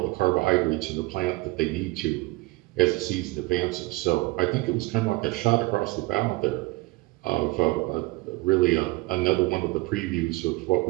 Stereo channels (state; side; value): quieter; left; 22.1 dB